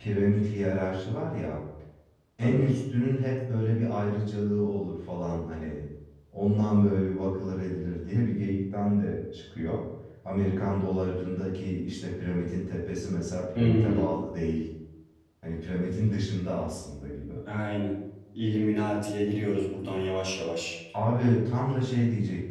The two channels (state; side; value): identical; both; correlation 1.00